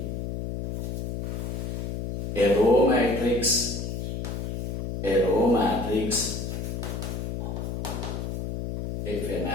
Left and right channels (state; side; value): noise; left; hum, 4 dB below the sound